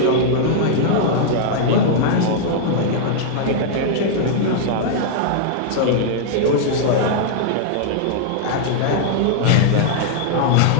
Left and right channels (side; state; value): both; different; correlation -0.01